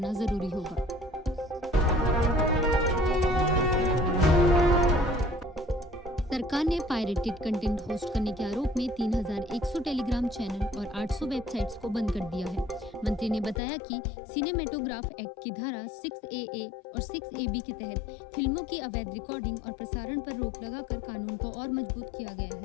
जरूरी होगा। सरकार ने पायरेटेड कंटेंट होस्ट करने के आरोप में 3100 टेलीग्राम चैनल और 800 वेबसाइट्स को बंद कर दिया है। मंत्री ने बताया कि सिनेमेटोग्राफ एक्ट की धारा 6AA और 6AB के तहत फिल्मों की अवैध रिकॉर्डिंग और प्रसारण पर रोक लगाकर कानून को और मजबूत किया गया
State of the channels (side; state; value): right; drops out; at 13.6 s